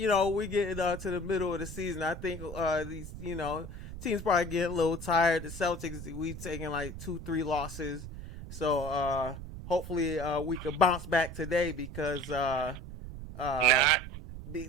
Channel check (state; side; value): noise; right; rumble, 10 dB below the sound